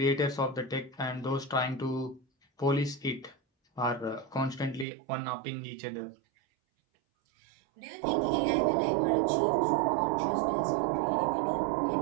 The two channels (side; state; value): left; drops out; at 4.9 s